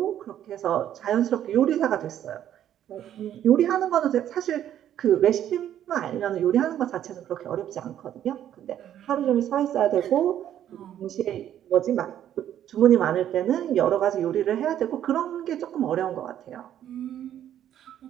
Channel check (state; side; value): quieter; left; 10.9 dB